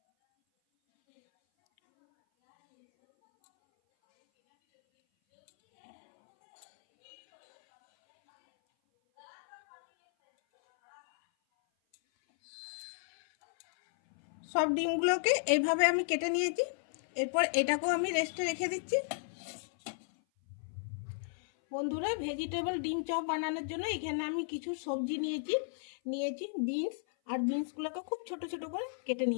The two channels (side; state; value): right; silent; 55 dB below the other